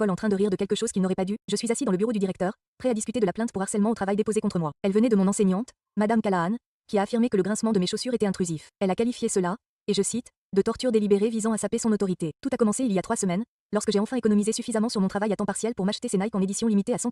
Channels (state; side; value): identical; both; correlation 1.00